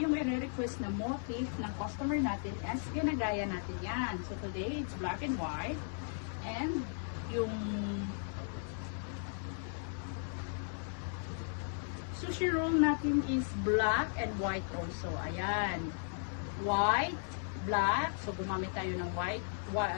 i-request na motif ng customer natin, as ginagaya natin yan. So today, it's black and white. And yung sushi roll natin is black and white also. Ayan. White, black. So gumamit tayo ng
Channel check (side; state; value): right; silent; 54 dB below the other